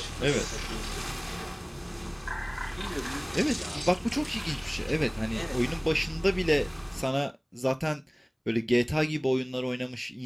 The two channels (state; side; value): identical; both; correlation 1.00